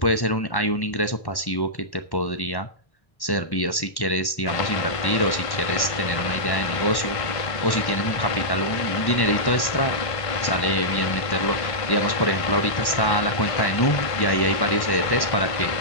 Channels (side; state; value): right; late; 1.1 ms